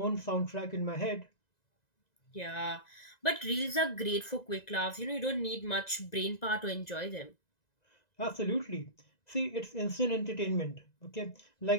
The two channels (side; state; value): right; late; 1.9 ms